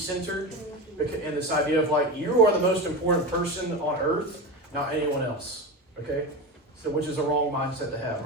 And this idea of like, you are the most important person on earth, not anyone else. Okay? So, which is a wrong mindset to have.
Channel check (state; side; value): normal; both; correlation 0.22